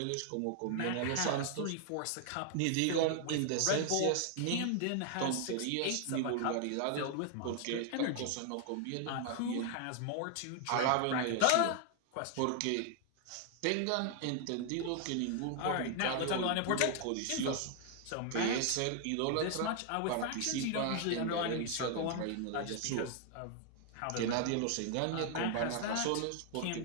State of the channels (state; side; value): different; both; correlation 0.00